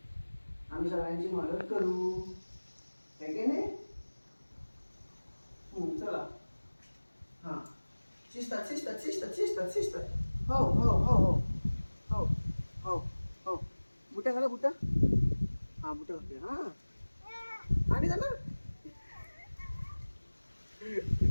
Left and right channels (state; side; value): inverted; both; correlation -1.00